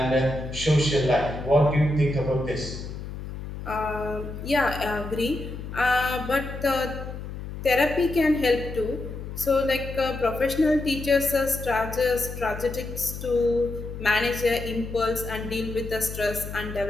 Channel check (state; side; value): noise; left; hum, 9 dB below the sound